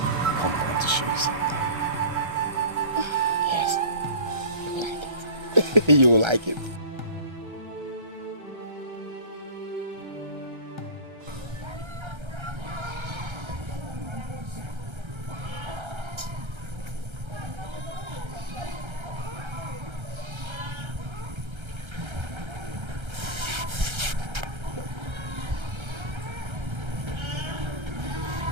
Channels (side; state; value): left; late; 1.3 ms